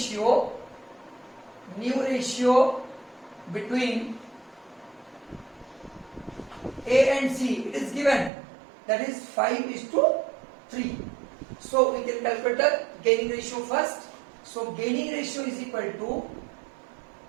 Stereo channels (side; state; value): left; drops out; at 8.3 s